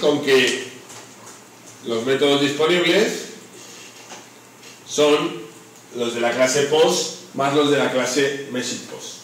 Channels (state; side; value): identical; both; correlation 1.00